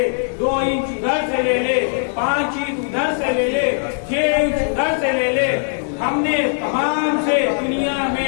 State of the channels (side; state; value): right; silent; digital silence